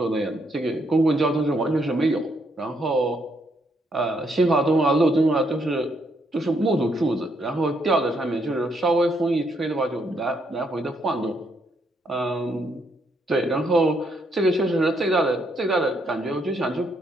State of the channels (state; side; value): normal; both; correlation 0.74